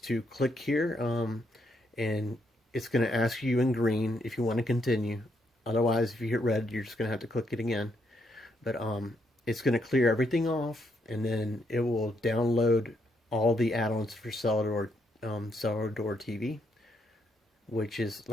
click here, and it's going to ask you in green if you want to continue. Otherwise, if you hit red, you're just going to have to click it again. But it's going to clear everything off, and then it will download all the add-ons for Cellar Door TV, which is,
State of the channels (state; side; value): normal; both; correlation 0.76